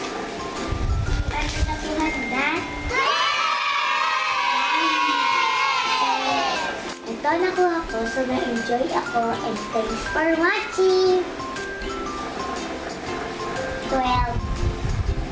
ito nakuha ko. So, na-enjoy ako. And thanks for watching. 12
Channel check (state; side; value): identical; both; correlation 1.00